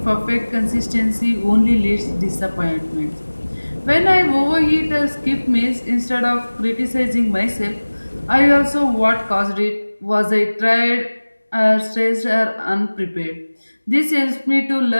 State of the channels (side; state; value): both; inverted; correlation -1.00